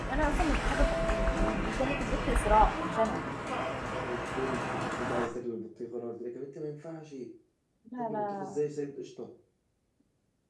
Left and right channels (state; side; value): identical; both; correlation 1.00